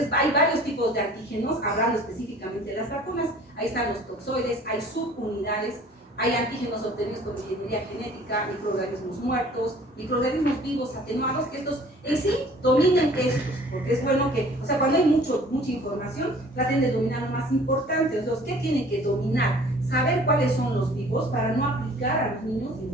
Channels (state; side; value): normal; both; correlation 0.51